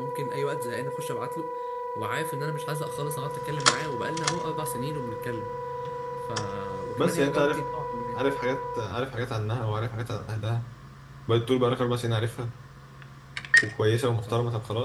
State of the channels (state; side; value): identical; both; correlation 1.00